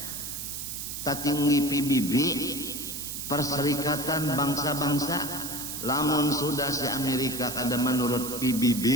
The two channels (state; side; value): noise; right; hiss, 6 dB below the sound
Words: Tatinggi PBB, Perserikatan Bangsa-Bangsa, lamun sudah si Amerika kada menurut PBB,